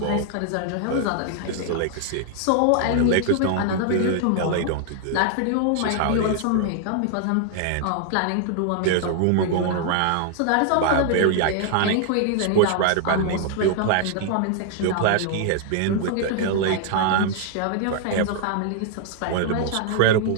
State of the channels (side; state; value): both; different; correlation 0.00